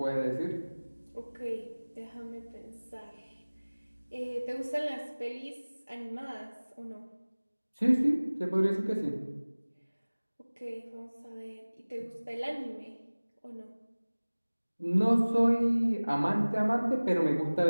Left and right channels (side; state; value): both; inverted; correlation -1.00